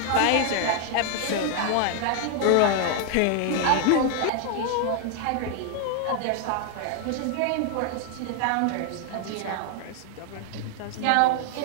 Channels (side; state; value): both; different; correlation 0.00